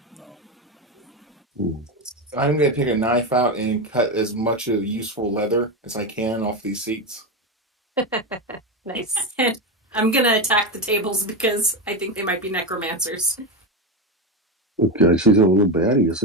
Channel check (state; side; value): normal; both; correlation 0.14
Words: I'm going to take a knife out and cut as much of useful leather as I can off these seats. Nice. I'm gonna attack the tables because I think they might be necromancers. Okay, she's a little baddie,